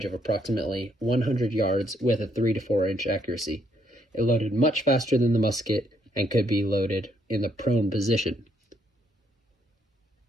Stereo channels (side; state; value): both; normal; correlation 0.72